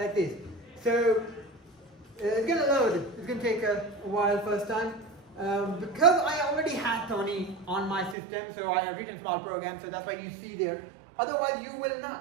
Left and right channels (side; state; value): left; drops out; at 8.2 s